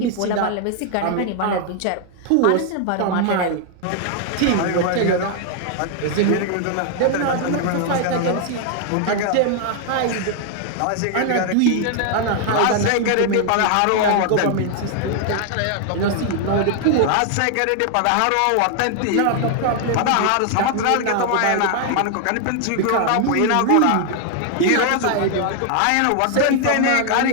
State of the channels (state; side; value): different; both; correlation 0.00